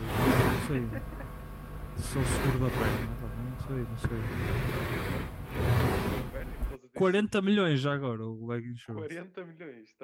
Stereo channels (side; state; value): both; identical; correlation 1.00